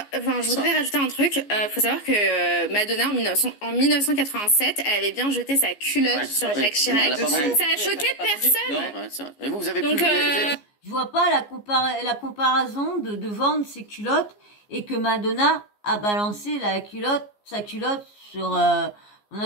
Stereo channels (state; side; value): late; right; 14 ms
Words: rajouter un truc. Faut savoir que Madonna, en 1987, elle avait bien jeté sa culotte sur Jacques Chirac. Elle a pas vendu. Ça a choqué personne. Non. Ouais, c'est vrai. Mais vous avez Donc, plus... vous avez- Je vois pas la comparaison de vendre ses culottes et que Madonna a balancé sa culotte sur... on